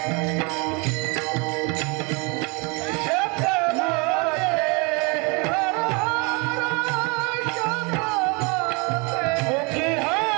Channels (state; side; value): quieter; left; 30.5 dB